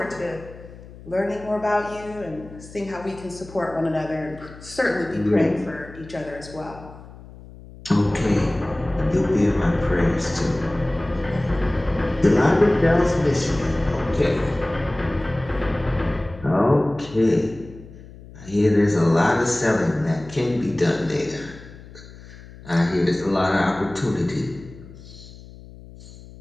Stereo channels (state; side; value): noise; left; hum, 18 dB below the sound